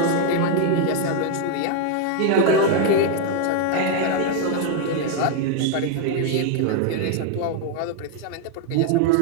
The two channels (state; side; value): different; both; correlation 0.01